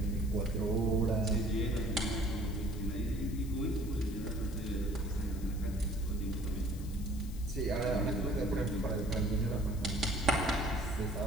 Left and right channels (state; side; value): noise; left; hiss, 19 dB below the sound